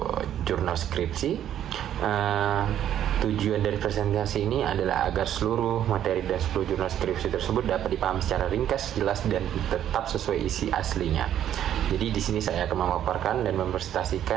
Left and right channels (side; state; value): left; quieter; 10.7 dB